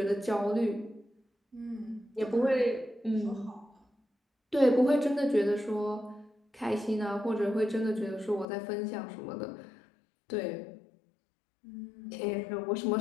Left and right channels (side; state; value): right; drops out; at 8.5 s